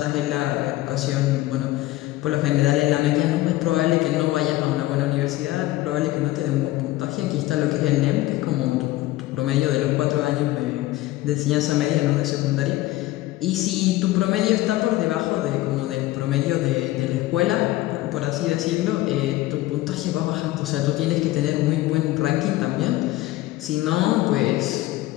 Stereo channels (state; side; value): quieter; right; 16.9 dB